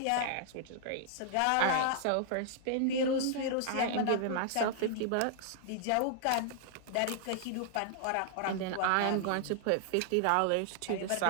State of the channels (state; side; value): different; both; correlation -0.01